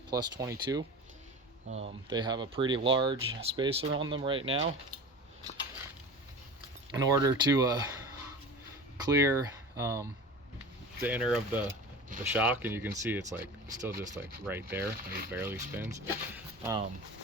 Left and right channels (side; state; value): both; normal; correlation 0.33